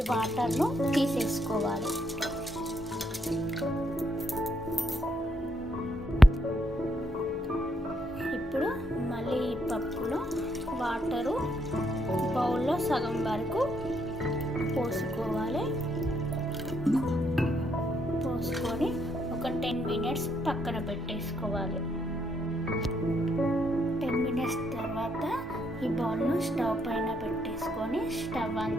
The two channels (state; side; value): normal; both; correlation 0.75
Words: వాటర్ను తీసేసుకోవాలి. ఇప్పుడు మళ్ళీ ఈ పప్పులో వాటరు బౌల్లో సగం వరకు పోసుకోవాలి. పోసుకొని ఒక 10 మినిట్స్ పక్కన పెట్టేసుకోవాలి. 10 మినిట్స్ తర్వాత ఈ బౌల్ను స్టవ్ పైన పెట్టేసుకొని స్టవ్ ఆన్